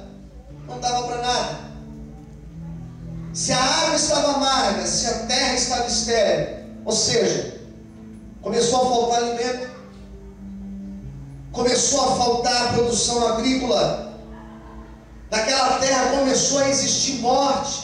não dava para nada. Se a água estava amarga, se a terra estava estéril, ou seja, começou a faltar alimento, começou a faltar produção agrícola. Naquela terra começou a existir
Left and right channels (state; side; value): identical; both; correlation 1.00